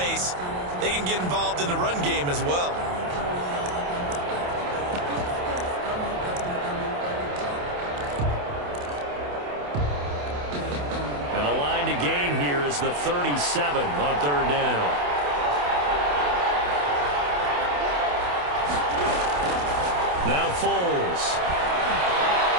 They can get involved in the run game as well. And the line to gain here is the 37 on 3rd down. Now Foles.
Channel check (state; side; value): late; left; 28 ms